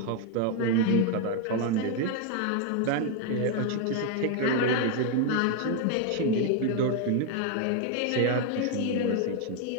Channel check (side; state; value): both; different; correlation 0.01